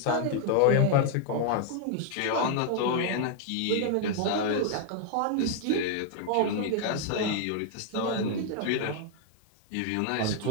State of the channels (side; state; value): both; different; correlation 0.00